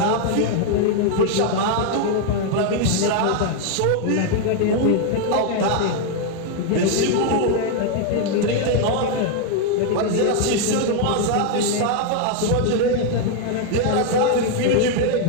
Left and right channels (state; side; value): different; both; correlation 0.00